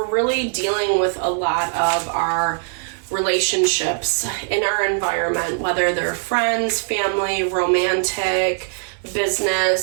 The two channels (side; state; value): left; silent; 65 dB below the other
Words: really dealing with a lot of our relationships in our environment, whether they're friends, family, romantic,